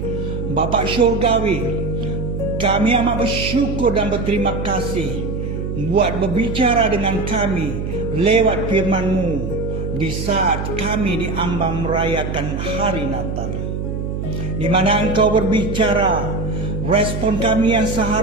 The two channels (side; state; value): right; noise; hum, 4 dB below the sound